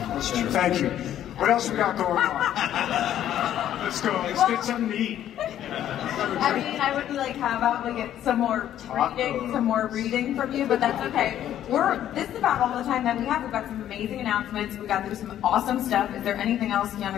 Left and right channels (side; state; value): right; quieter; 11.3 dB